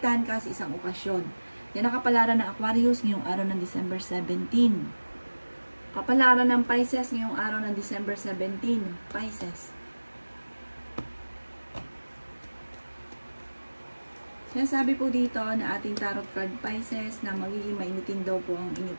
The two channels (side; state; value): both; inverted; correlation -1.00